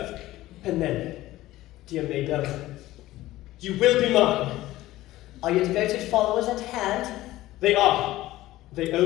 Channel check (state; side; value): quieter; right; 16.3 dB